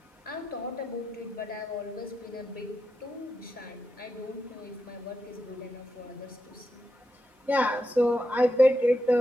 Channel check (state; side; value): normal; both; correlation 0.86